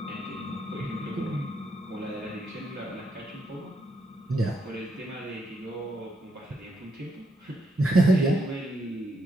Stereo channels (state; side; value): normal; both; correlation 0.78